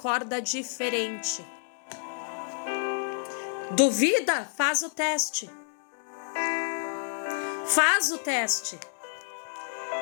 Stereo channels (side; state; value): right; silent; 58 dB below the other